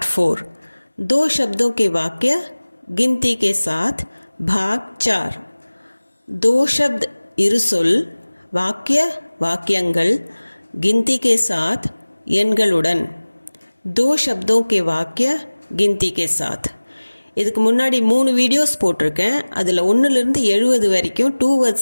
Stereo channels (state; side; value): inverted; both; correlation -1.00